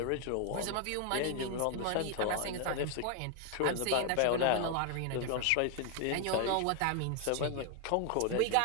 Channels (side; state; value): both; different; correlation 0.00